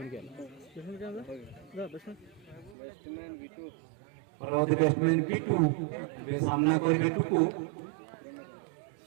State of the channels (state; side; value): drops out; left; at 2.8 s